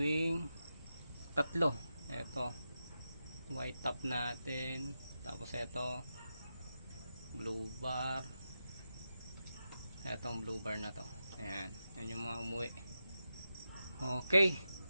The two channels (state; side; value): inverted; both; correlation -0.89